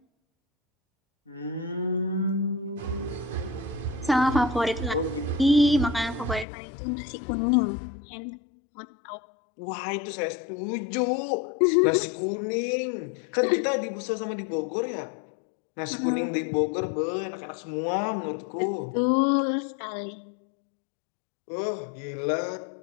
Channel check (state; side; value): drops out; right; at 6.5 s